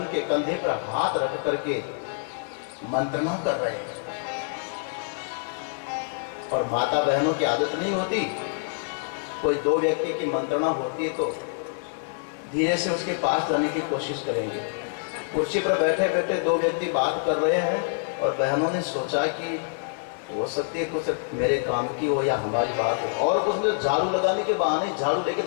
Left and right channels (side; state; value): right; silent; digital silence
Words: के कंधे पर हाथ रख करके मंत्रणा कर रहे हैं। और माता बहनों की आदत नहीं होती, कोई दो व्यक्ति की मंत्रणा होती है तो धीरे से उसके पास जाने की कोशिश करेंगे। कुर्सी पर बैठे बैठे दो व्यक्ति बात कर रहे हैं और बहनों ने सोचा कि हो सकती है कुछ मेरे काम की हो या हमारी बात हो, और कुछ झाड़ू लगाने के बहाने झाड़ू लेके